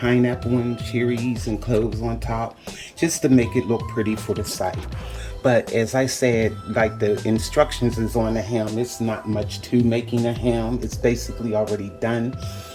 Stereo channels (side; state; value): both; identical; correlation 1.00